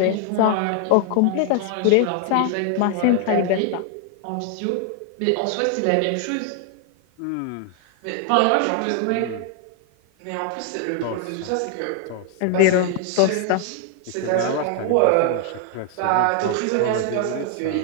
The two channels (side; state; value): both; different; correlation 0.00